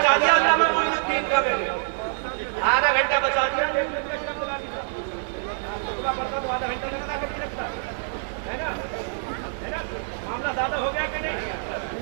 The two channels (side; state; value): left; silent; digital silence